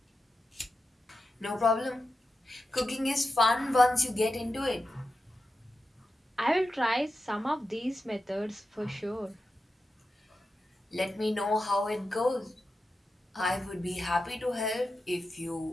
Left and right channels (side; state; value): both; normal; correlation 0.91